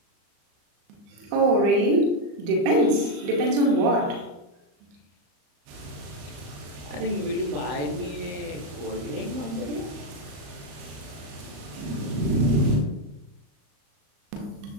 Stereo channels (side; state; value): left; late; 34 ms